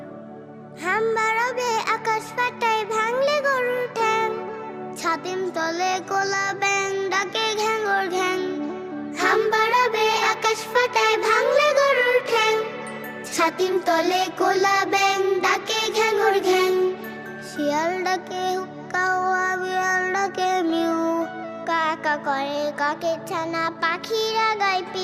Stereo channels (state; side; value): identical; both; correlation 1.00